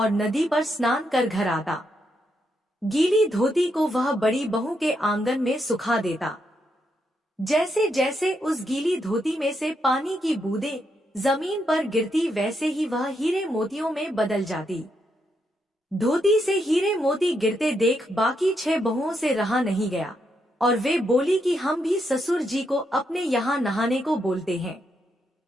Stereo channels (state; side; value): normal; both; correlation 0.80